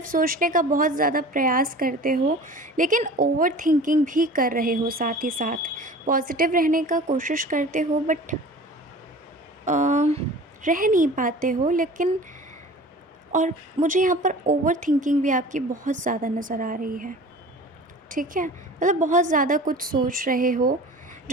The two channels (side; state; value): both; normal; correlation 0.41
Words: सोचने का बहुत ज़्यादा प्रयास करते हो, लेकिन ओवर थिंकिंग भी कर रहे हो। साथ ही साथ पॉजिटिव रहने का कोशिश करते हो बट रह नहीं पाते हो। लेकिन और मुझे यहाँ पर ओवर थिंकिंग भी आपकी बहुत ज़्यादा नज़र आ रही है। ठीक है, मतलब बहुत ज़्यादा कुछ सोच रहे हो।